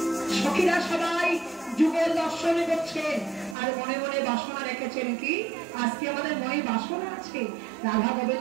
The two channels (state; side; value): drops out; left; at 3.6 s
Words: সখীরা সবাই যুগল দর্শন করছে, আর মনে মনে বাসনা রেখেছেন কি, আজকে আমাদের মনে বাসনা আছে রাধা